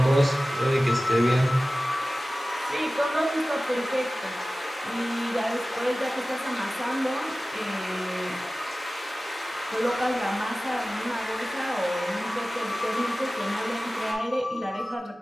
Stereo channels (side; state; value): both; normal; correlation 0.96